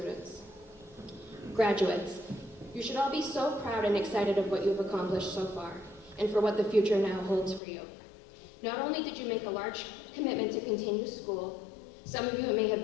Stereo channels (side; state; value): right; drops out; at 7.6 s